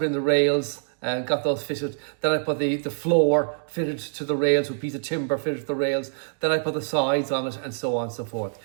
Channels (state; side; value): silent; left; digital silence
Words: in the rails and got those fitted. Then I put the floor fitted to the rails with a piece of timber fitted to the rails. Then I put the sides on it, and so on and so forth.